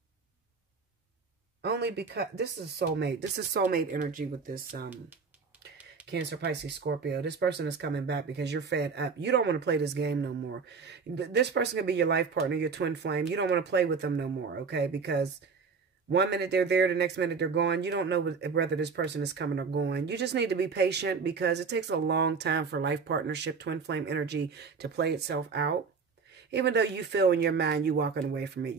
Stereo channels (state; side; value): quieter; left; 5.2 dB